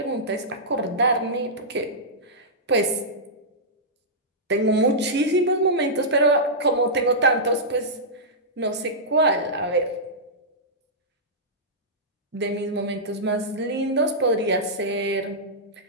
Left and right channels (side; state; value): both; normal; correlation -0.13